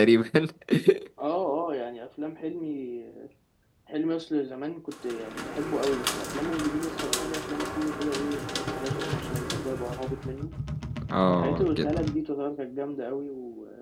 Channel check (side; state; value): both; identical; correlation 1.00